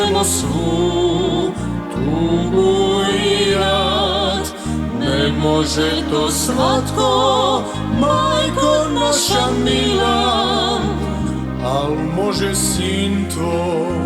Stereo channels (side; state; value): both; identical; correlation 1.00